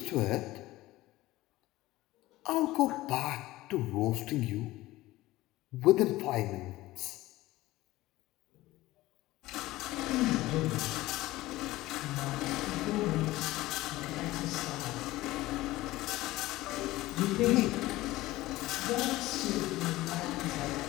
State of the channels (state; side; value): quieter; right; 17.6 dB